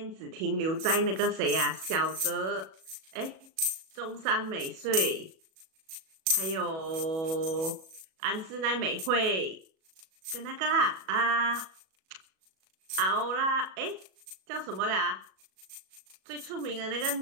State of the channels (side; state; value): left; late; 37 ms